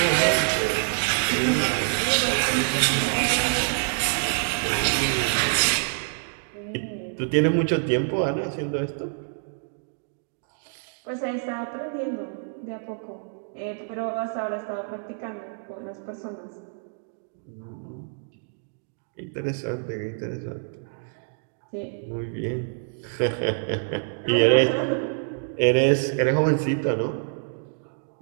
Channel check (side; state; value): left; silent; digital silence